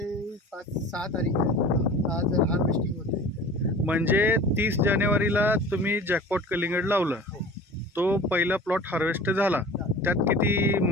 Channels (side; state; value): both; normal; correlation 0.41